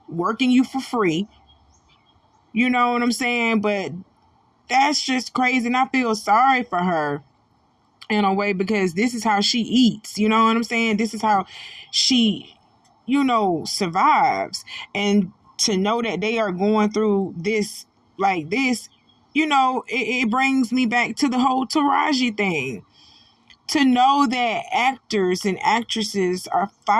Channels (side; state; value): both; identical; correlation 1.00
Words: free. You know what I'm saying? But that's just crazy, and I feel sorry for her in a way, because this is how she eats. You know what I'm saying? This is how she, you know, survives. And to know that they are going through this like this, you know, it brings me back to the whole Taraji thing. To know that actors and actresses are